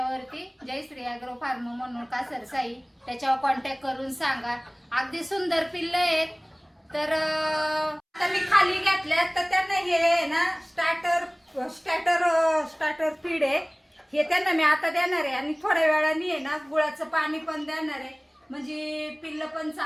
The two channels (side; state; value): both; identical; correlation 1.00